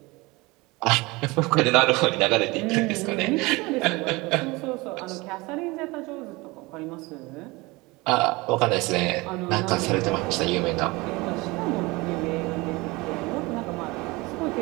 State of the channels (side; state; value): left; quieter; 23.4 dB